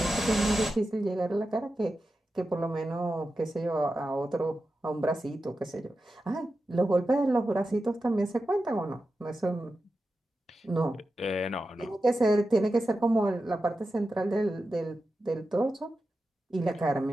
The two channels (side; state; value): both; normal; correlation 0.91